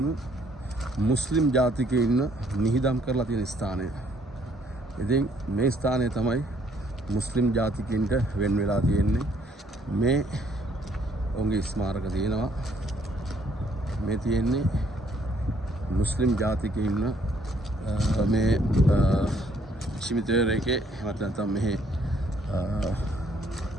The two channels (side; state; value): both; normal; correlation 0.65